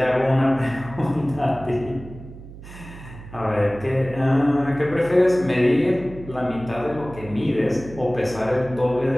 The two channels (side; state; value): right; noise; hum, 15 dB below the sound